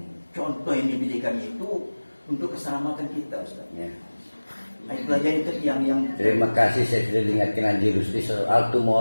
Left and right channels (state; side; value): inverted; both; correlation -1.00